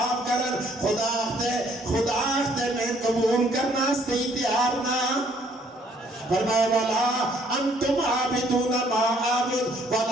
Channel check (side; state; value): both; normal; correlation 0.64